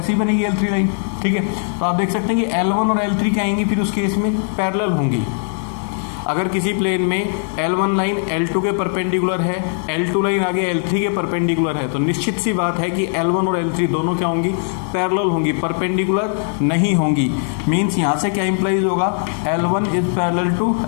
बनेगी L3 लाइन। ठीक है, तो आप देख सकते हैं कि L1 और L3 क्या आएंगी फिर उस केस में? पैरेलल होंगी। अगर किसी प्लेन में L1 लाइन L2 के परपेंडिकुलर है, L2 लाइन आगे L3 के परपेंडिकुलर है, तो निश्चित सी बात है कि L1 और L3 दोनों क्या होंगी? पैरेलल होंगी, परपेंडिकुलर नहीं होंगी। मीन्स यहाँ से क्या इंप्लाइज होगा? L1 is parallel to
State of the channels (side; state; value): right; silent; digital silence